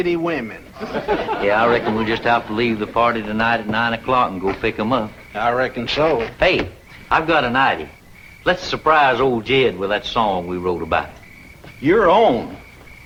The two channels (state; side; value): identical; both; correlation 1.00